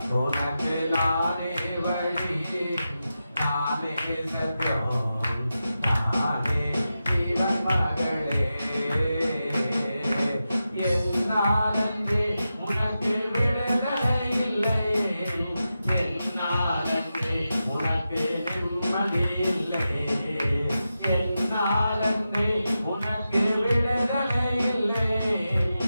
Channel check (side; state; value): both; inverted; correlation -0.91